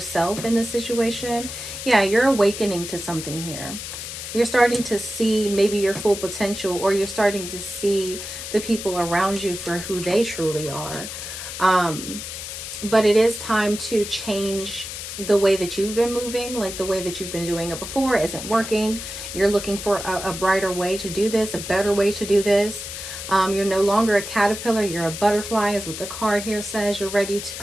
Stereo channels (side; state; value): left; noise; hiss, 8 dB below the sound